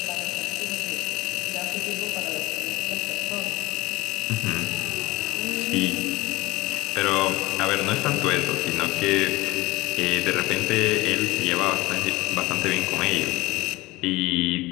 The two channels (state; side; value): quieter; right; 20.6 dB